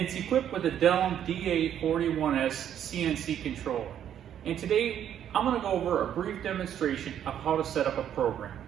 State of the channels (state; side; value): quieter; left; 9.9 dB